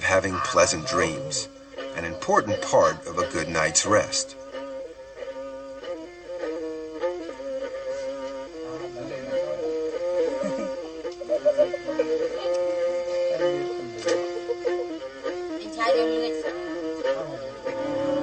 having pleasant dreams, an important part of a good night's rest.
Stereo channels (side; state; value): both; identical; correlation 1.00